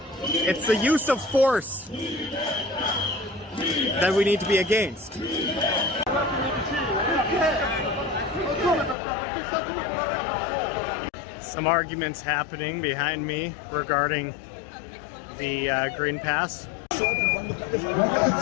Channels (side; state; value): right; drops out; at 9.0 s